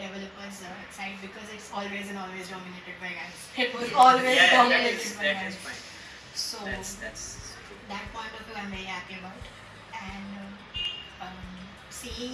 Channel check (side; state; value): both; identical; correlation 1.00